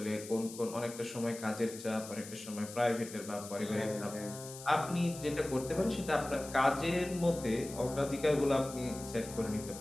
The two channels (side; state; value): left; noise; hiss, 13 dB below the sound